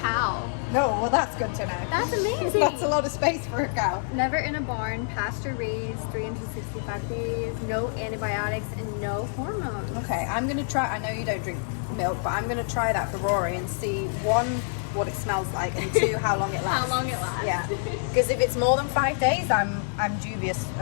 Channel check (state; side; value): silent; right; digital silence